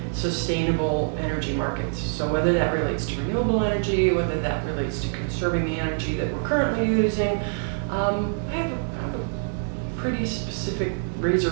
sustainable energy markets. So whether that relates to renewable energy, whether that relates to conserving the energy that we're currently using, I have a pretty specific razor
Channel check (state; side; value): silent; left; digital silence